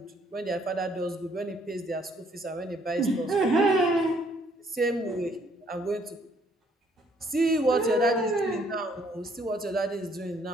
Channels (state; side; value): normal; both; correlation 0.65